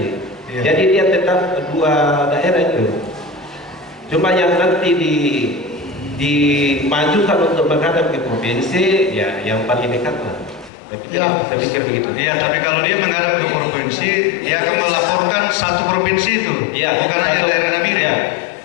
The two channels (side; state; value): right; drops out; at 10.7 s